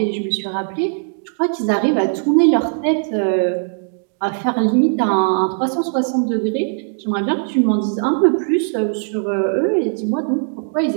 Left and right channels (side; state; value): left; silent; digital silence